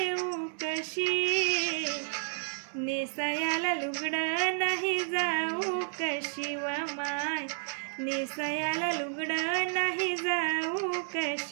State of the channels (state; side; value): silent; left; 57 dB below the other